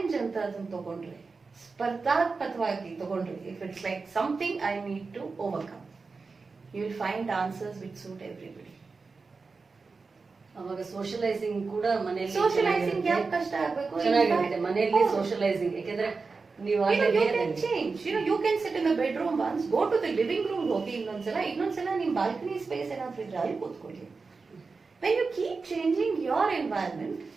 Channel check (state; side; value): quieter; left; 4.4 dB